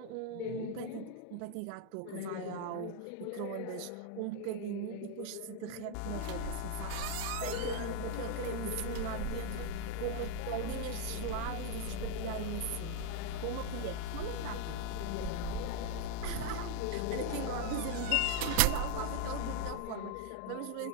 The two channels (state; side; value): different; both; correlation 0.00